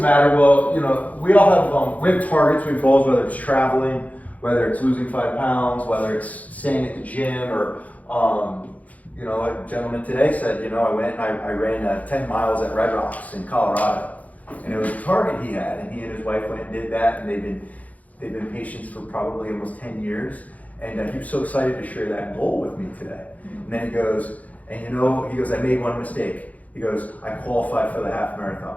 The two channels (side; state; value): right; late; 0.073 ms